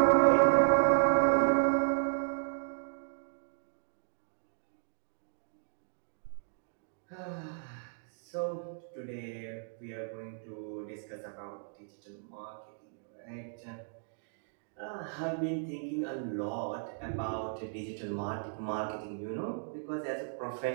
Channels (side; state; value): left; silent; digital silence